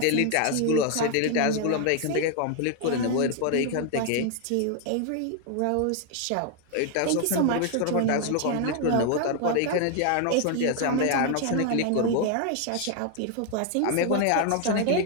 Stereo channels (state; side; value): different; both; correlation 0.00